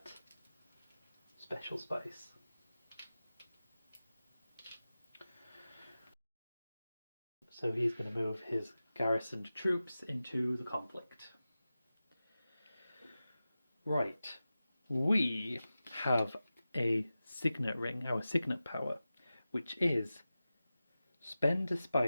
special spice. So he's going to move his garrisoned troops into the conflict. Right, we have a signet ring, our signet power, which is spend a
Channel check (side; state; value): both; inverted; correlation -0.95